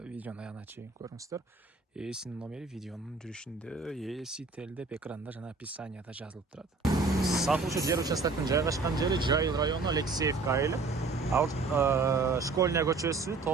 Видеону аягына чейин көрүңүздөр. Ээсинин номери видеонун жүрүшүндө, ээси телдеп экранда жана описанияда жазылып турат. Сатылуучу жер участоктун жайгашкан жери Жайыл району Алексеевка айылы. Школьная көчөсү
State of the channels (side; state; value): left; quieter; 4.0 dB